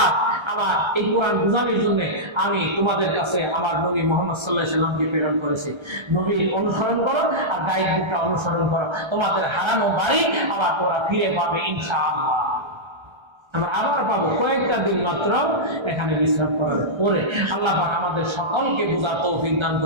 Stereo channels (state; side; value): late; left; 1.3 ms